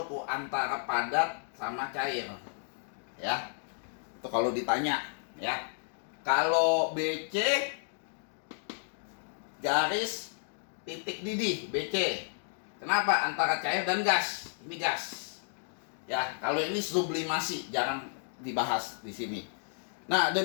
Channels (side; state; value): right; silent; digital silence